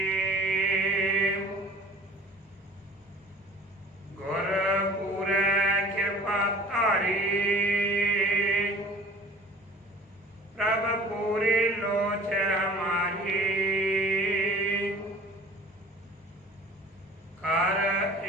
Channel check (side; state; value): both; normal; correlation 0.46